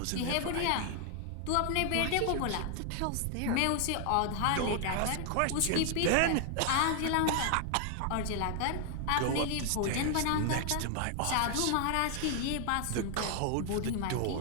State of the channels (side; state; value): both; different; correlation 0.00